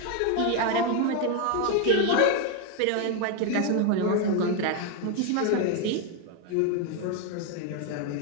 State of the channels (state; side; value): different; both; correlation 0.01